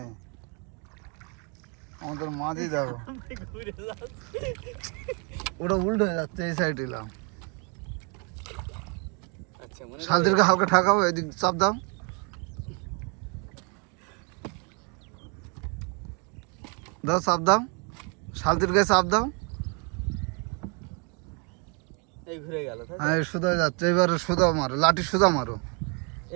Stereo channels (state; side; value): quieter; left; 35.2 dB